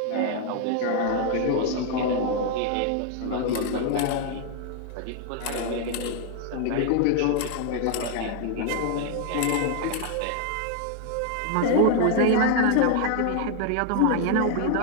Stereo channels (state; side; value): different; both; correlation 0.00